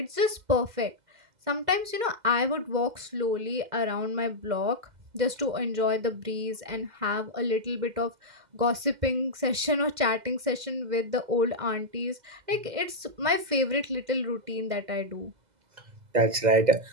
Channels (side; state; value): left; late; 2.1 ms